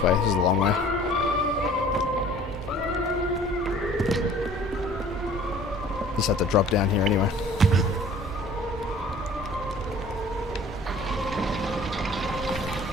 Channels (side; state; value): both; normal; correlation 0.50